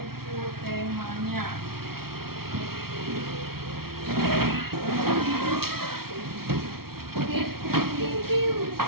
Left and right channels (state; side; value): late; left; 0.94 ms